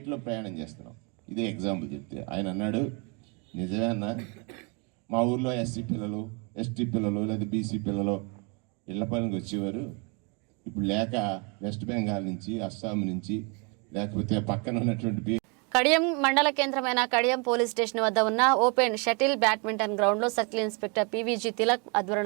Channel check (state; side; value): quieter; left; 32.9 dB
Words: ప్రయాణం చేస్తున్నాం, ఇదే ఎగ్జాంపుల్ చెప్తే ఆయన అన్నాడు, నిజమే అన్న, మా ఊర్లో ఎస్సీ పిల్లలు, ఎస్టీ పిల్లలు లేదా బీసీ పిల్లలు ఇళ్ల పనికి వచ్చేవారు, ఇప్పుడు లేక వెస్ట్ బెంగాల్ నుంచి, అస్సాం నుంచి, లేకపోతే పక్కన ఉన్నటువంటి కడియం మండల కేంద్రమైన కడియం పోలీస్ స్టేషన్ వద్ద ఉన్న ఓపెన్ షటిల్ బ్యాడ్మింటన్ గ్రౌండ్ లో సర్కిల్ ఇన్స్పెక్టర్ పీవీజీ తిలక్